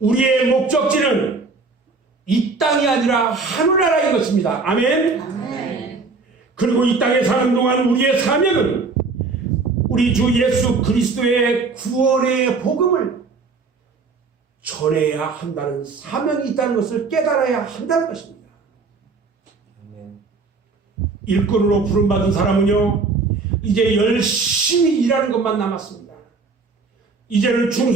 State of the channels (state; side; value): quieter; left; 4.2 dB